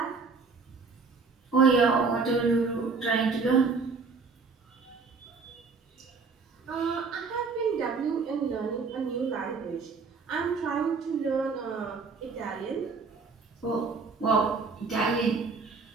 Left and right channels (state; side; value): quieter; left; 4.6 dB